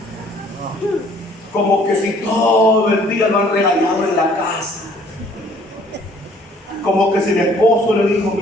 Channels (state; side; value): normal; both; correlation 0.58